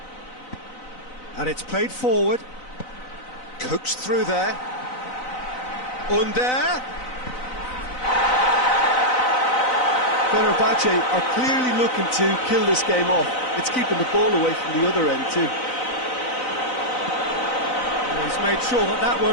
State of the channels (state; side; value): late; right; 4.0 ms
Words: And it's played forward. Coaxed through there. Under. Fenerbahce are clearly looking to kill this game off. It's keeping the ball away from the other end too. He's made sure that that